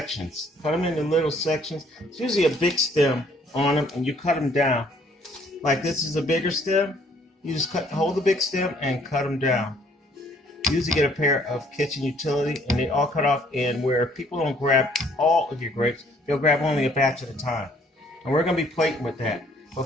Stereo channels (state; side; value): normal; both; correlation 0.62